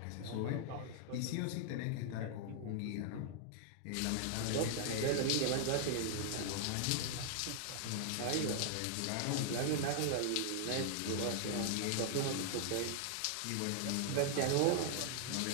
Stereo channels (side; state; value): both; different; correlation -0.01